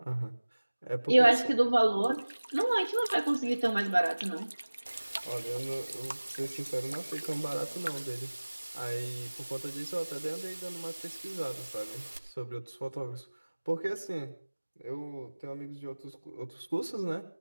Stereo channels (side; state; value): both; inverted; correlation -1.00